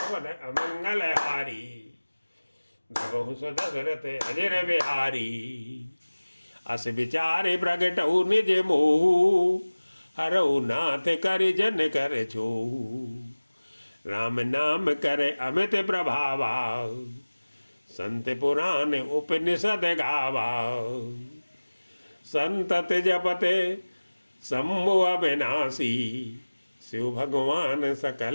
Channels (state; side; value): inverted; both; correlation -1.00